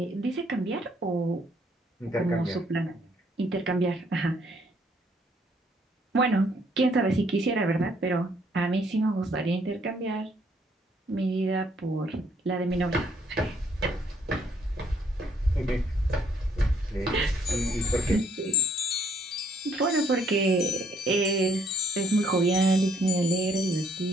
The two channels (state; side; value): normal; both; correlation 0.66